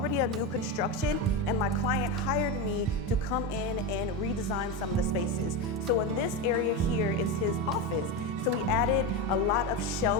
a new construction, and my client hired me to come in and redesign some of the spaces. So in this area here is his office. So we added a lot of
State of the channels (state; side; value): normal; both; correlation 0.15